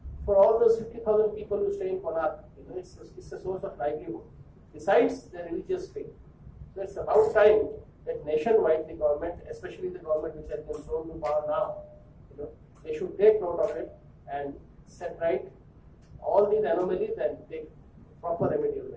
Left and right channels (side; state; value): both; identical; correlation 1.00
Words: for all those 50,000 people who stay in Konark, it's a source of livelihood. Besides the religious faith. So it's about time that nationwide the government, especially the government which has been thrown to power now, they should take note of it and set right all these anomalies and take proper remedial